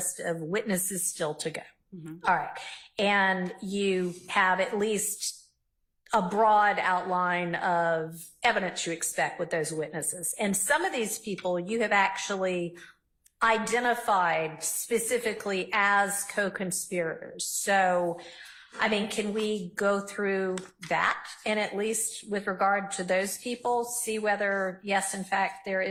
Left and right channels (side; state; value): both; identical; correlation 1.00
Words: of witnesses still to go. All right. And you have at least a broad outline of evidence you expect with those witnesses. And some of these people you have actually identified specifically as co-conspirators. So, I mean, can we go through that and at least with regard to those people, see whether, yes, in fact, there